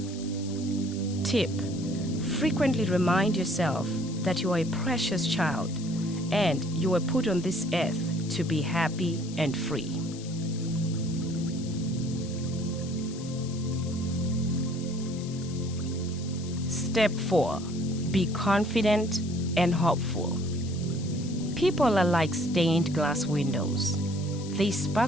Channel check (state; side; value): noise; left; hiss, 16 dB below the sound